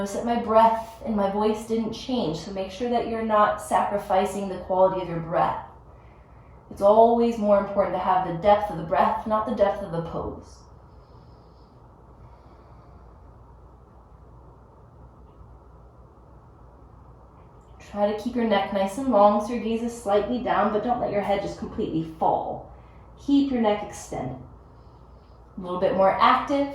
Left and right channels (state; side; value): identical; both; correlation 1.00